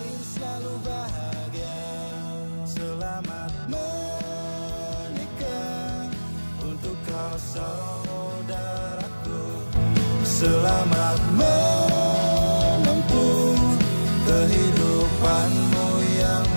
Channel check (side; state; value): both; inverted; correlation -1.00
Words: Selamat menempuh kehidupanmu yang